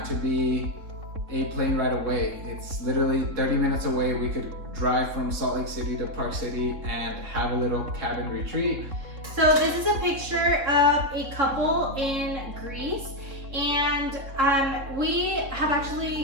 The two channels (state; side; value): late; left; 3.7 ms